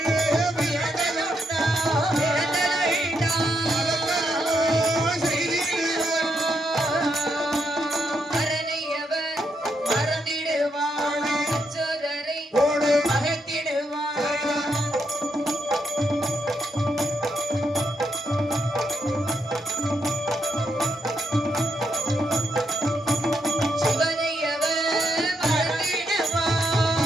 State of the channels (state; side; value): normal; both; correlation 0.79